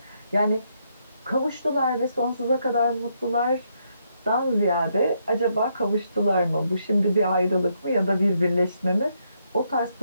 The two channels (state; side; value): inverted; both; correlation -0.76